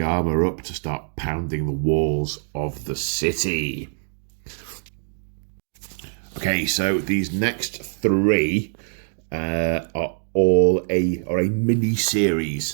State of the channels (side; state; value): left; silent; digital silence